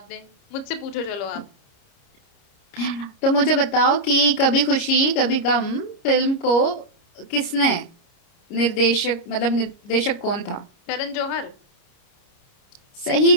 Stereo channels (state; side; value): late; right; 30 ms